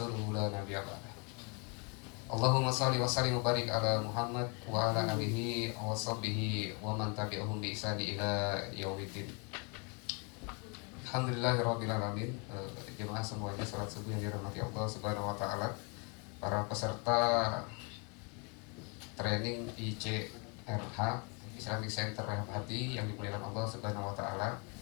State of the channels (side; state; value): right; quieter; 34.1 dB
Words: la nabiyya ba'dah. Allahumma shalli wa sallim wa barik ala Muhammad wa ala alihi wa sahbihi wa man tabi'ahum bi ihsani ila yaumiddin. Alhamdulillahirrabbilalamin. Jemaah semuanya, salat subuh yang dirahmati Allah Subhanahu wa taala. Para peserta training ICRH, Islamic Center Rehab Hati, yang dimuliakan Allah Subhanahu wa taala.